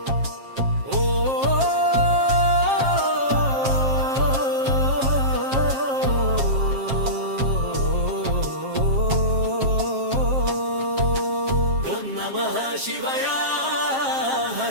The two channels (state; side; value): late; left; 7.5 ms